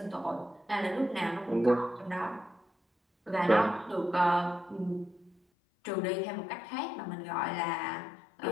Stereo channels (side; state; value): right; drops out; at 5.4 s